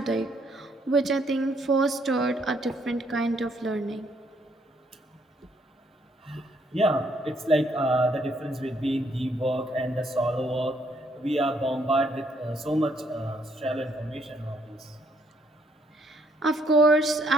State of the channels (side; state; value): both; normal; correlation 0.70